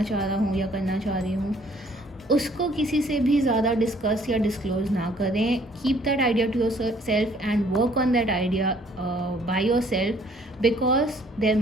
चाह रहा हूँ या करना चाह रही हूँ, उसको किसी से भी ज़्यादा डिस्कस या डिस्क्लोज ना करें. Keep that idea to yourself and work on that idea by yourself, because there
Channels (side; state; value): both; normal; correlation 0.60